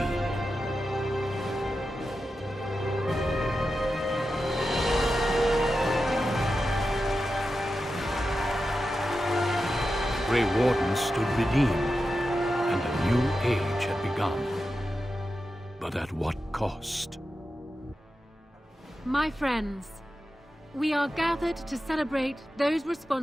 The Grey Wardens stood redeemed, and a new age had begun. But at what cost? My friends, we are gathered to celebrate those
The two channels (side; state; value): both; normal; correlation 0.91